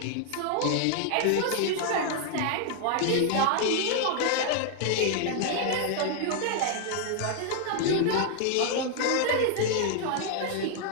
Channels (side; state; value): both; different; correlation 0.00